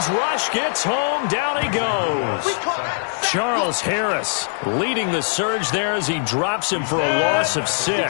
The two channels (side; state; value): right; silent; digital silence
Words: rush gets home. Down he goes. Charles Harris leading the surge there as he drops him for a loss of